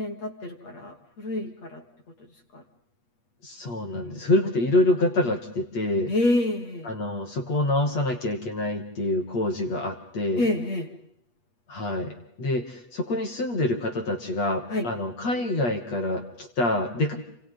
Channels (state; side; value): late; right; 8.4 ms